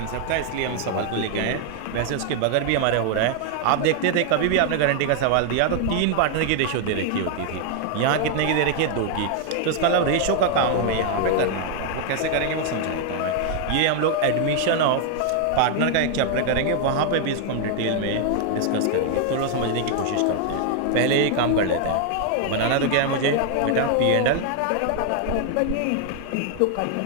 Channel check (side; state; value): both; different; correlation 0.00